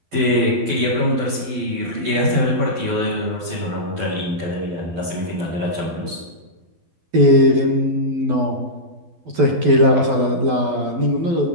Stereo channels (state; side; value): late; left; 12 ms